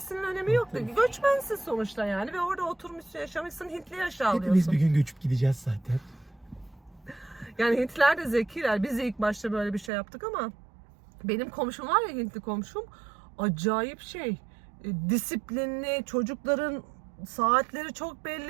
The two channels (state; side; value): drops out; left; at 9.9 s